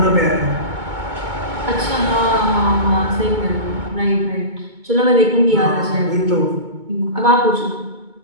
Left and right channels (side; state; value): left; late; 2.2 ms